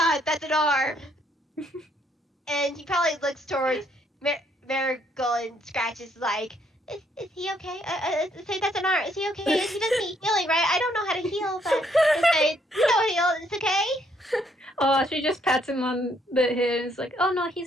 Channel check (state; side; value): normal; both; correlation 0.70